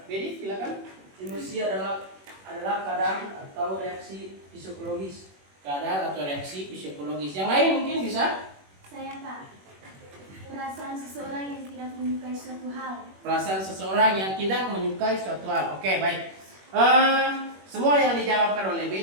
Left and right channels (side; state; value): left; late; 21 ms